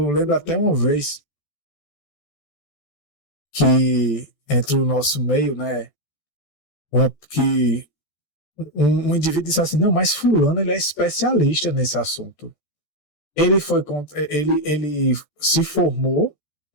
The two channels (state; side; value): late; right; 14 ms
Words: lembro até uma vez que entre o nosso meio, né, que um indivíduo disse assim, não, mas fulano ele é especialista nesse assunto. Ele se formou